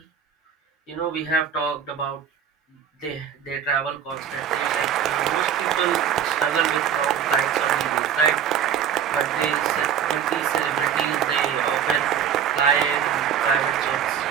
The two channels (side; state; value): left; quieter; 8.5 dB